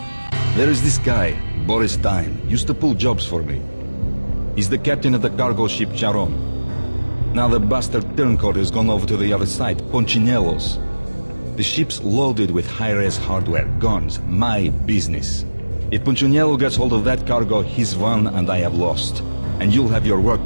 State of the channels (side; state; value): both; inverted; correlation -1.00